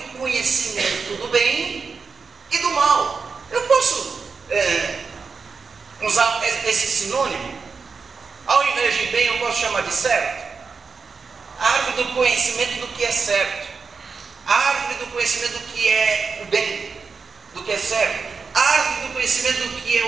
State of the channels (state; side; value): quieter; left; 5.2 dB